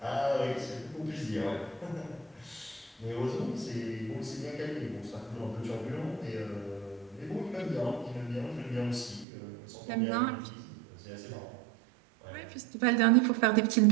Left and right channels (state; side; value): drops out; left; at 9.2 s